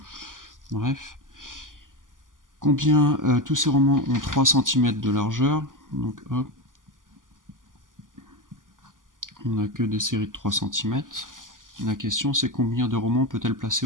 Bref. Combien tous ces romans ont 3 cm de largeur. Donc hop. On n'a que des séries de 3 cm. La question c'est combien de romans peut-elle placer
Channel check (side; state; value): left; late; 0.89 ms